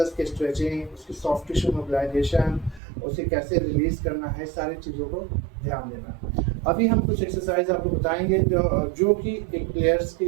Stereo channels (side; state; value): left; drops out; at 2.8 s